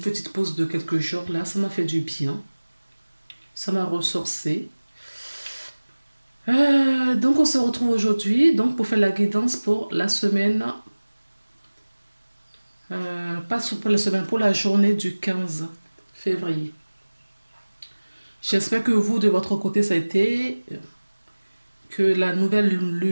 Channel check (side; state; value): both; inverted; correlation -1.00